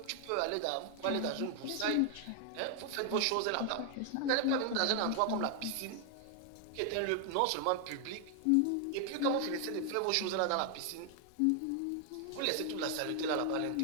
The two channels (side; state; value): both; different; correlation 0.00